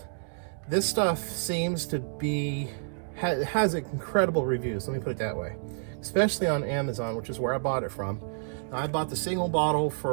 this stuff seems to be, has incredible reviews, let me put it that way, especially on Amazon, which is where I bought it from. Now, I bought the single bottle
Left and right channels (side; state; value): left; silent; digital silence